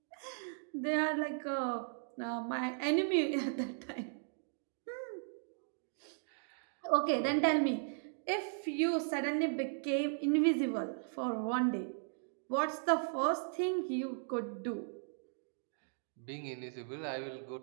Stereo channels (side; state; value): left; silent; digital silence